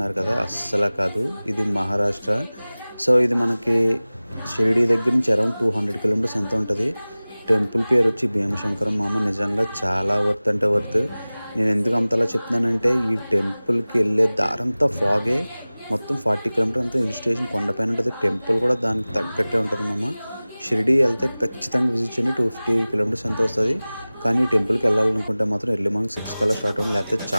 కదా! అస్సల కాదు. ఇది మహారాష్ట్ర. సో, ఇది మనకి షిరిడీ దగ్గర నుంచి అరౌండ్ 200 కిలోమీటర్స్ ఎంతో ఉంటది. టెంపుల్ పేరొచ్చి భీమశంకరం మామ. నిజంగా చాలా వర్త్ అంటే వర్త్. నేనెందుకు అంతలా చెప్తున్నానంటే ఈ టెంపుల్‌కి ఎళ్ళే దారంతా ఫాగే. మొత్తం 40 కిలోమీటర్ అంతా హిల్ స్టేషన్ కొండపైన ఉంటది. టెంపుల్ కూడా దానికి తగ్గట్టే ఉంటది మామ. షిరిడీ ఎళ్తే ఖచ్చితంగా విజిట్ చేయండి. 250 కిలోమీటర్స్ ఎంతో వస్తది. కానీ ఈ టెంపుల్‌కెళ్ళాలనుకుంటే మాత్రం ఎర్లీ మార్నింగ్ 6 కల్లా స్టార్ట్ అవ్వండి. లేకపోతే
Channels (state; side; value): inverted; both; correlation -0.99